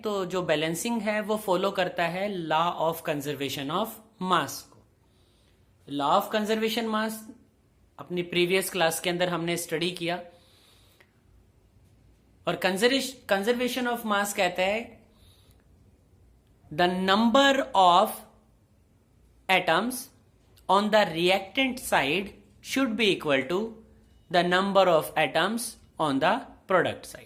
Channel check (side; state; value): both; identical; correlation 1.00